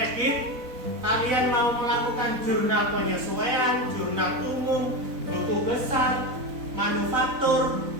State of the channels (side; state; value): left; late; 4.0 ms